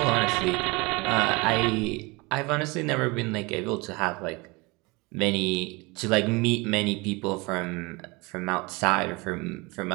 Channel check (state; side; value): quieter; left; 25.8 dB